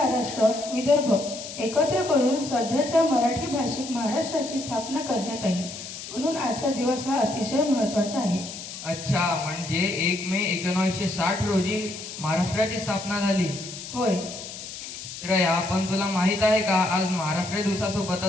विदर्भ एकत्र करून सध्याच्या मराठी भाषिक महाराष्ट्राची स्थापना करण्यात आली. म्हणून आजचा दिवस हा अतिशय महत्त्वाचा आहे. अच्छा, म्हणजे 1 मे 1960 रोजी महाराष्ट्राची स्थापना झाली. होय श्रेया, पण तुला माहित आहे का आज महाराष्ट्र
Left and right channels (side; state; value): left; noise; hiss, 11 dB below the sound